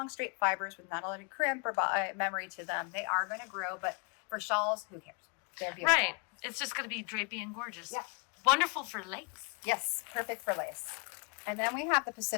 straight fibers with not a lot of crimp or memory to them, they are going to grow. But for shawls, who cares? They're beautiful. Right. It's just going to be drapey and gorgeous. Yeah. Wonderful for lace. Yes, perfect for lace. And then we have the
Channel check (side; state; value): right; quieter; 35.3 dB